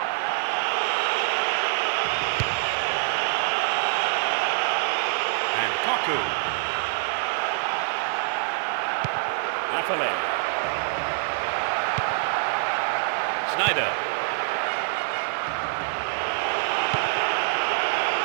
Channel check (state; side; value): silent; left; 61 dB below the other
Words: And Toku. Lafale. Snyder.